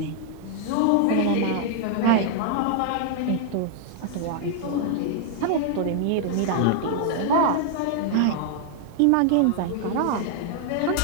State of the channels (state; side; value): different; both; correlation 0.00